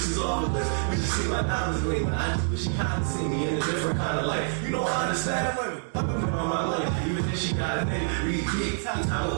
off the list when she see my diamonds gleam. I just wish she kinda see me in a different kind of light. You know I understand women. I've been putting on my life, even if she got a nigga. Repeat, got a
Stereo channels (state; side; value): silent; left; 60 dB below the other